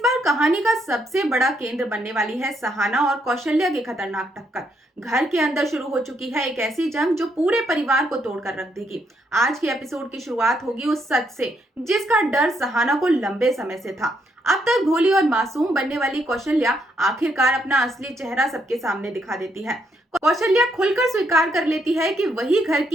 बार कहानी का सबसे बड़ा केंद्र बनने वाली है सहाना और कौशल्या की खतरनाक टक्कर। घर के अंदर शुरू हो चुकी है एक ऐसी जंग जो पूरे परिवार को तोड़कर रख देगी। आज के एपिसोड की शुरुआत होगी उस सच से जिसका डर सहाना को लंबे समय से था। अब तक भोली और मासूम बनने वाली कौशल्या आखिरकार अपना असली चेहरा सबके सामने दिखा देती है। कौशल्या खुलकर स्वीकार कर लेती है कि वही घर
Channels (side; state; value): both; normal; correlation 0.75